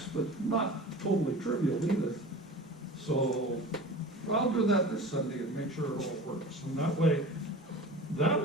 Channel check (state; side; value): normal; both; correlation 0.36